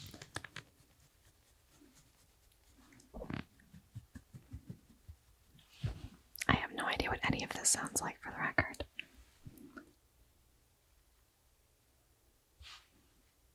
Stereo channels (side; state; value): both; identical; correlation 1.00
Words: I have no idea what any of this sounds like for the record.